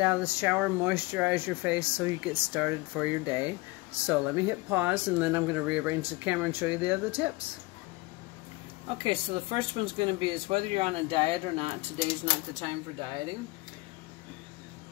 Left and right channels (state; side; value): quieter; right; 22.8 dB